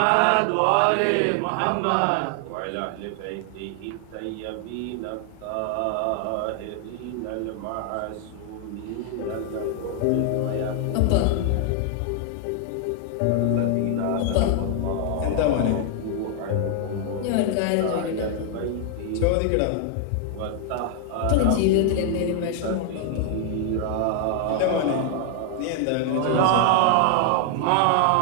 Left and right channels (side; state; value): both; different; correlation 0.00